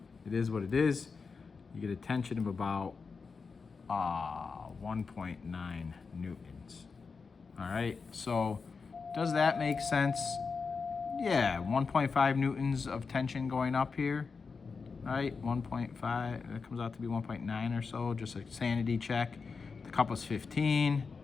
it is what it is. You get a tension of about 1.9 newtons. All right, so does that make sense? Yeah, 1.5 newtons of tension going up here, right? 1.5, that comes out to be 1.9 or so, just a sanity check. The cup was 15.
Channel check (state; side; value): quieter; right; 4.9 dB